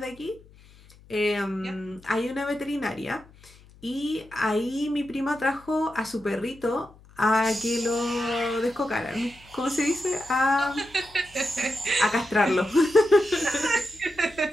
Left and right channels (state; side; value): noise; left; hum, 25 dB below the sound